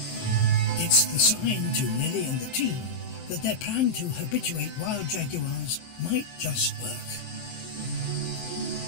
It's the sign to Lily and the team that their plan to habituate wild jaguars might just work.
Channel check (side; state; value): right; late; 23 ms